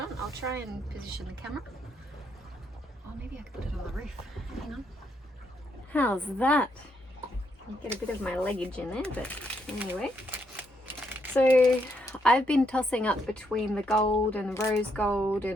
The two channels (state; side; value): normal; both; correlation 0.76